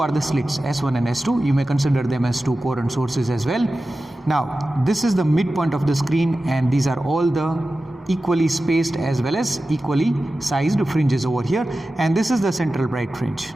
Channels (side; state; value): both; normal; correlation 0.94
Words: the slits, S1 and S2. You may consider them as two current sources as well. Now, this is the midpoint of the screen, and these are all the equally spaced as well as equally sized fringes over here, and this is the central bright fringe,